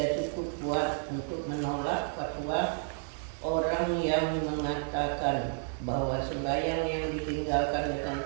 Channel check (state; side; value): silent; left; 57 dB below the other